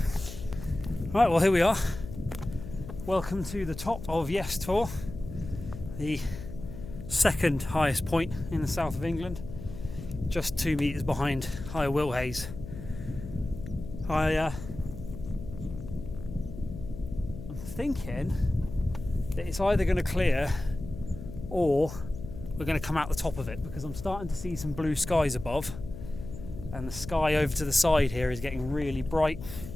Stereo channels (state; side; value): noise; left; hum, 11 dB below the sound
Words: Right, well, here we are. Welcome to the top of Yes Tor, the second highest point in the south of England, just 2 metres behind Higher Wilhays. I'm thinking that it's either going to clear or we're going to come out the top of it, because I'm starting to see some blue skies above, and the sky over to the side here is getting really bright